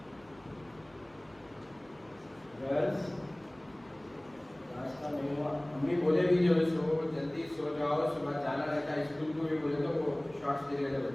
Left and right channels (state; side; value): noise; right; hum, 28 dB below the sound